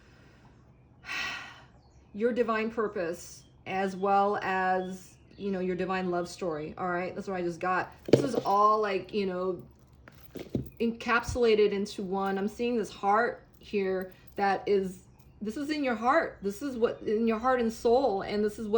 divine purpose, as well as, your divine love story. All right. That's what I just got. This is all like, encapsulated into one. I'm seeing this heart here this is in your heart. This is what in your heart and soul. And this is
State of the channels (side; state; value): both; identical; correlation 1.00